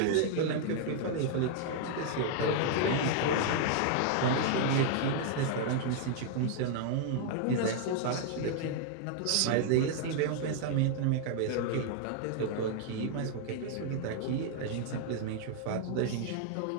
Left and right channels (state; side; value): different; both; correlation 0.00